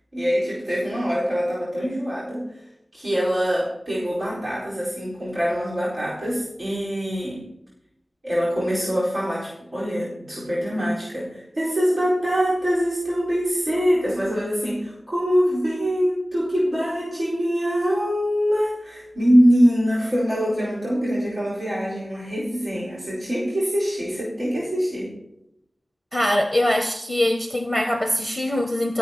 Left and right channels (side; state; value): both; normal; correlation 0.97